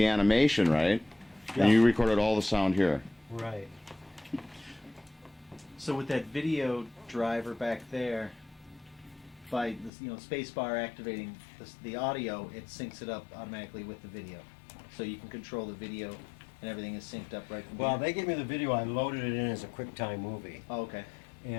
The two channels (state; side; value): drops out; right; at 9.9 s